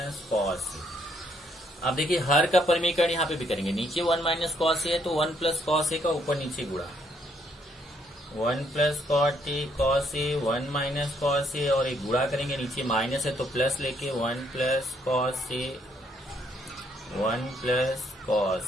कॉस ए। अब देखिए हर का परिमीकरण यहाँ पे भी करेंगे, नीचे 1 माइनस कॉस ए है तो 1 प्लस कॉस ए का ऊपर नीचे गुणा, 1 plus cos A 1 minus cos ए, और एक गुणा करेंगे, नीचे माइनस है तो प्लस लेके 1 plus cos A 1 plus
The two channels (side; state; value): both; normal; correlation 0.70